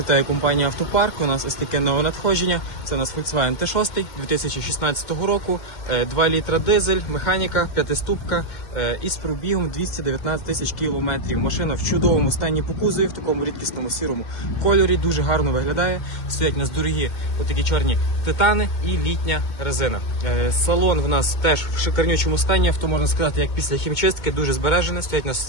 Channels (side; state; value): right; late; 2.2 ms